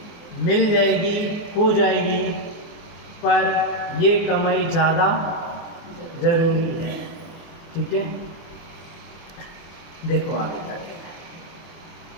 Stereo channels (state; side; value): late; right; 24 ms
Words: मिल जाएगी, हो जाएगी, पर ये कमाई ज़्यादा जरूरी है। ठीक है, देखो आगे जाके,